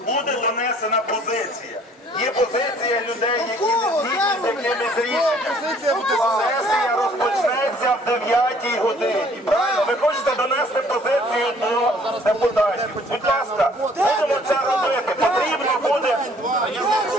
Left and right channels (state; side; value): normal; both; correlation 0.58